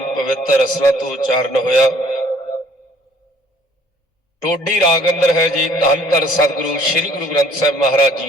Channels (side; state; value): both; normal; correlation 0.58